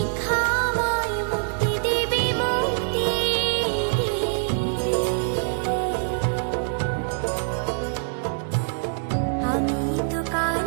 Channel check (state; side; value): silent; left; digital silence